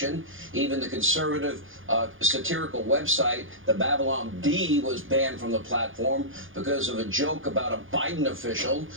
Even the conservative satirical website, the Babylon Bee, was banned from the platform because of a joke about a Biden official.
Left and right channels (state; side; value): late; left; 0.58 ms